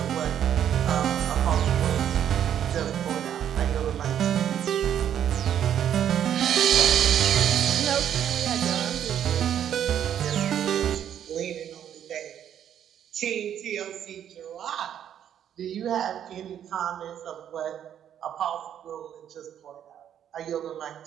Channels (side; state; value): left; quieter; 9.7 dB